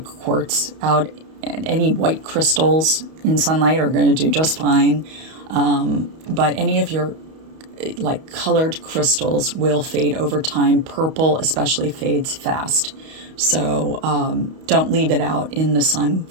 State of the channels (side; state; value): left; late; 31 ms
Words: quartz out, and any white crystals in sunlight are going to do just fine. But any of your colored crystals will fade over time. Purple especially fades fast. So don't leave it out in the sun